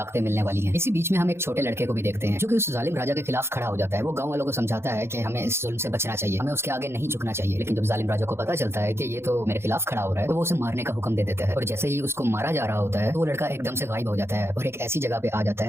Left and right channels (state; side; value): late; left; 0.12 ms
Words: मिलने वाली हैं। इसी बीच में हम एक छोटे लड़के को भी देखते हैं जो कि उस जालिम राजा के खिलाफ खड़ा हो जाता है। वो गांव वालों को समझाता है कि हमें इस जुल्म से बचना चाहिए, हमें उसके आगे नहीं झुकना चाहिए। लेकिन जब जालिम राजा को पता चलता है कि ये तो मेरे खिलाफ खड़ा हो रहा है, तो वो उसे मारने का हुक्म दे देता है। और जैसे ही उसको मारा जा रहा होता है तो वो लड़का एकदम से गायब हो जाता है और एक ऐसी जगह पे आ जाता